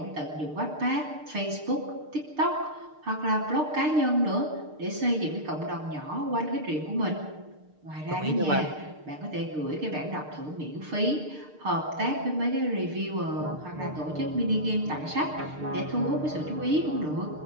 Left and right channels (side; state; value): left; late; 6.6 ms